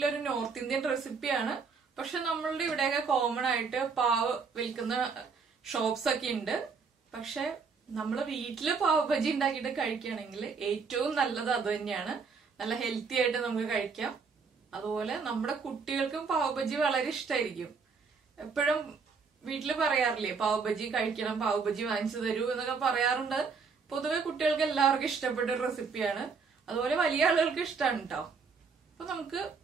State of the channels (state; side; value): quieter; left; 5.2 dB